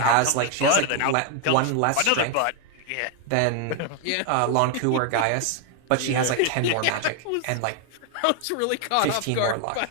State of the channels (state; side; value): different; both; correlation 0.00